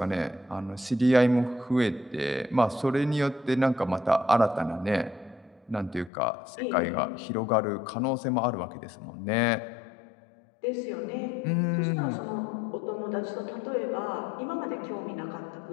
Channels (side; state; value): right; drops out; at 6.1 s